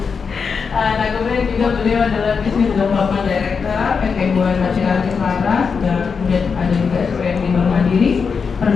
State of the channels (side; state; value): right; quieter; 5.6 dB